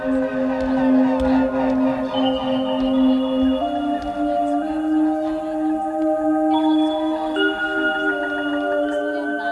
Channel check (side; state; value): both; identical; correlation 1.00